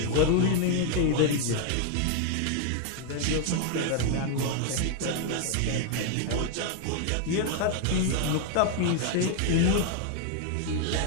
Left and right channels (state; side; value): different; both; correlation 0.00